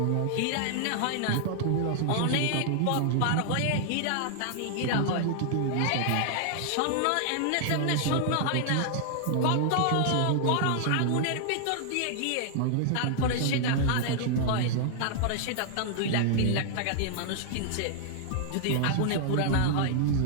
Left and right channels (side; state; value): both; different; correlation -0.01